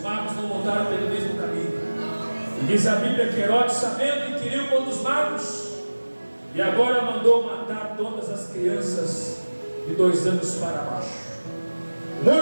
magos não voltaram pelo mesmo caminho. E diz a Bíblia que Herodes, sabendo, inquiriu contra os magos, e agora mandou matar todas as crianças de 2 anos para baixo.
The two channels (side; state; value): both; inverted; correlation -1.00